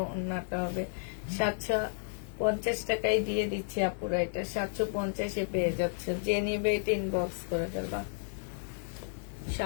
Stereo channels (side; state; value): right; silent; digital silence